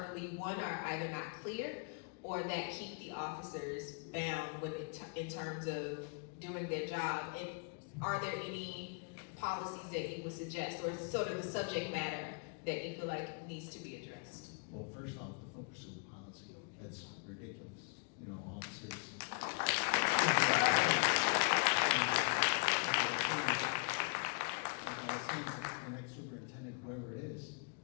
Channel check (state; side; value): quieter; right; 38.1 dB